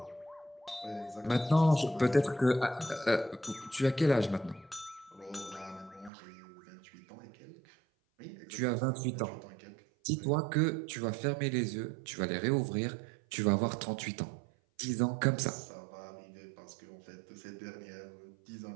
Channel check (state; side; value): drops out; left; at 6.1 s